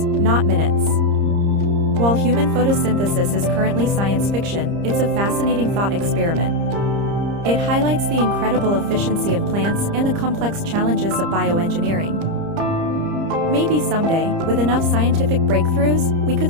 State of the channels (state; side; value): late; left; 30 ms